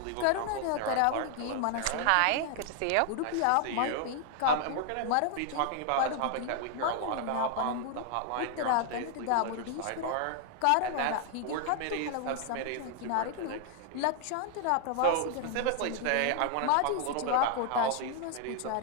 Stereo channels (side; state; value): both; different; correlation 0.00